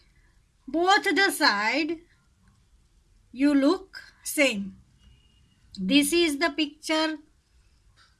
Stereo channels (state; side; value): identical; both; correlation 1.00